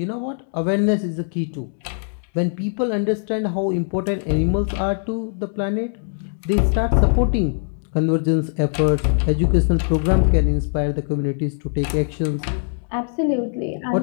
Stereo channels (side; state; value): right; silent; 65 dB below the other